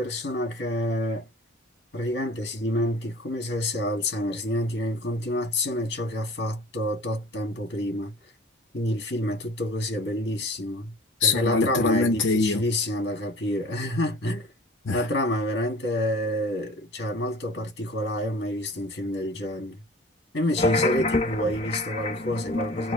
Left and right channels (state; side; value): normal; both; correlation 0.44